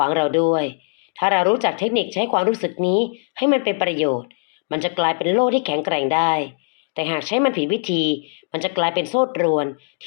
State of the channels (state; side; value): silent; right; digital silence